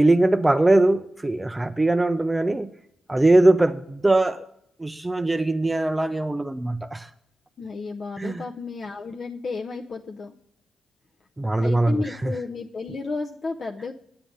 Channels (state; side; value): normal; both; correlation 0.97